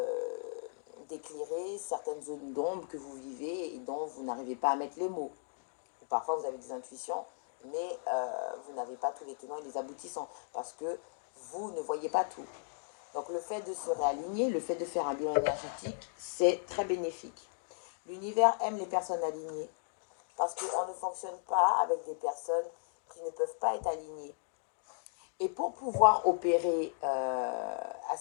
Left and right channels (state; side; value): silent; right; digital silence